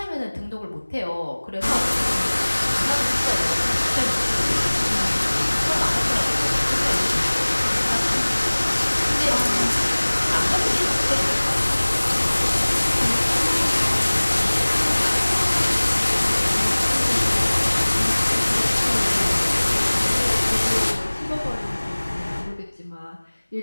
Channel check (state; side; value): inverted; both; correlation -1.00